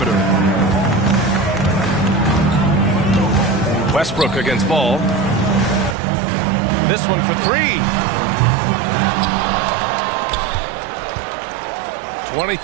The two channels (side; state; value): left; drops out; at 6.0 s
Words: Westbrook against Ball. This one for 3.